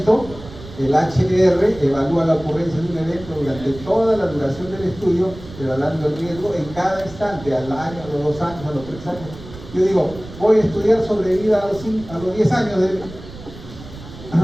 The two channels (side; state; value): right; noise; rumble, 16 dB below the sound